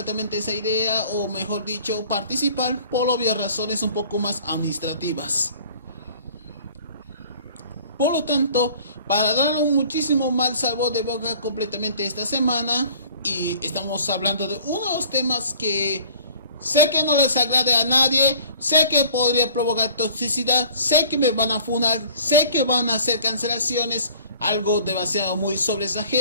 esa idea, o mejor dicho, participar por obvias razones un poco más administrativas. Por lo tanto, para dar un muchísimo mal sabor de boca completamente esta semana, y estamos hablando de uno de los temas que sé que no les agrade a nadie, sé que podría provocar toxicidad, sé que me van a funar, sé que van a hacer cancelaciones, algo demasiado muy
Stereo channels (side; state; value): both; inverted; correlation -0.50